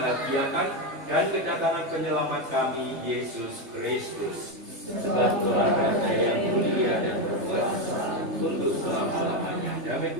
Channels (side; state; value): left; late; 3.3 ms